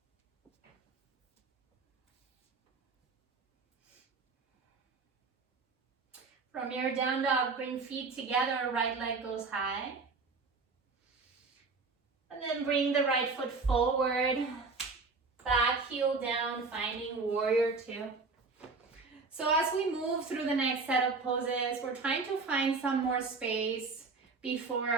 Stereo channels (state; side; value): quieter; left; 4.2 dB